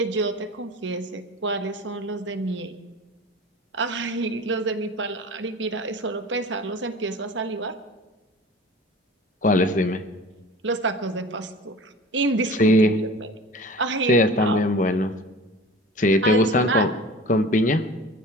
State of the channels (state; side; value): normal; both; correlation 0.39